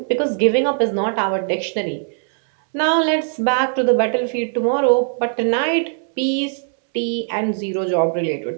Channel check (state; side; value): silent; left; 66 dB below the other